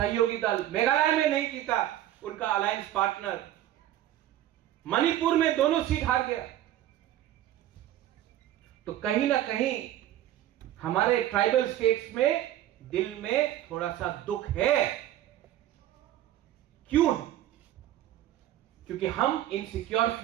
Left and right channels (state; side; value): quieter; left; 13.0 dB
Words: दल, मेघालय में नहीं जीता उनका अलायंस पार्टनर, मणिपुर में दोनों सीट हार गया। तो कहीं ना कहीं हमारे ट्राइबल स्टेट्स में दिल में थोड़ा सा दुख है। क्यों? क्योंकि हम इनसिक्योर